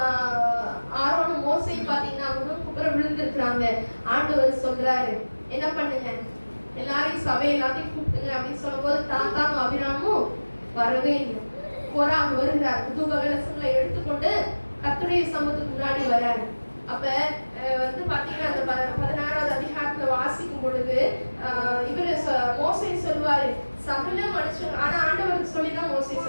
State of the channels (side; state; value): both; inverted; correlation -1.00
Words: ஆரோனும் மோசையும் பாத்தீங்கன்னா குப்புற விழுந்திருக்கிறாங்க. ஆண்டவர் சொல்றாரு என்ன பண்ணுங்க, எல்லாரையும் சபை எல்லாத்தையும் கூப்பிட்டுங்க அப்படின்னு சொல்லும் போது தாத்தாவும் அபிராமும் வரவே இல்லை. கோராகு வருகிறார். புது கலசங்களை எடுத்துக்கொண்டு கர்த்தருடைய சமூகத்துக்கு முன்னாடி வராரு. அப்ப வந்து பாத்தீங்கன்னா அந்த 16வது அதிகாரத்துல வாசிக்கும் பொழுது இவரு மோசே சொல்லுவாரு சகல மனுஷன், ஆனா ஆண்டவருக்கு சொல்லிதான் மோசே